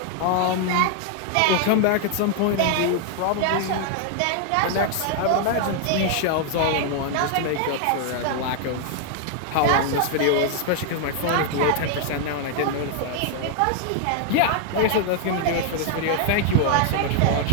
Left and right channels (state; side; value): different; both; correlation 0.00